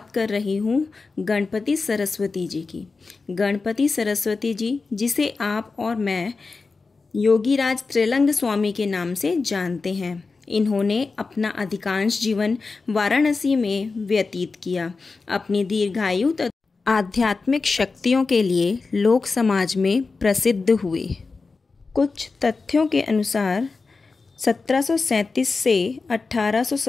कर रही हूँ गणपति सरस्वती जी की। गणपति सरस्वती जी, जिसे आप और मैं योगीराज त्रिलंग स्वामी के नाम से जानते हैं, इन्होंने अपना अधिकांश जीवन वाराणसी में व्यतीत किया। अपनी दीर्घायु तथा आध्यात्मिक शक्तियों के लिए लोक समाज में प्रसिद्ध हुए। कुछ तथ्यों के अनुसार 1737 से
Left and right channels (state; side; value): quieter; right; 4.2 dB